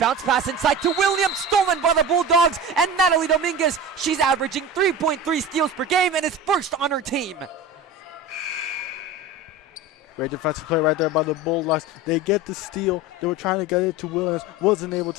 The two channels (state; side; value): normal; both; correlation 0.30